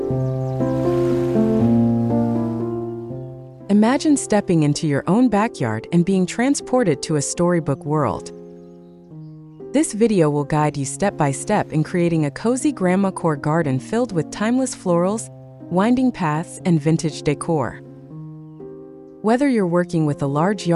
Imagine stepping into your own backyard and being transported to a storybook world. This video will guide you step by step in creating a cozy Grandmacore garden filled with timeless florals, winding paths, and vintage decor. Whether you're working with a large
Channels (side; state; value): both; identical; correlation 1.00